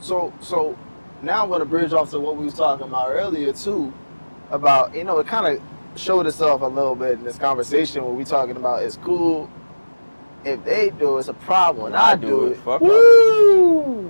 So now I'm gonna bridge off to what we was talking about earlier too, about it kind of showed itself a little bit in this conversation where we talking about it's cool if they do it's a problem when I do it. Fuck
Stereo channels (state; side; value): inverted; both; correlation -1.00